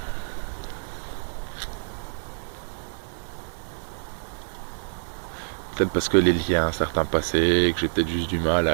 peut-être parce que les liens à un certain passé, que j'ai peut-être juste du mal à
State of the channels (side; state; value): left; silent; 60 dB below the other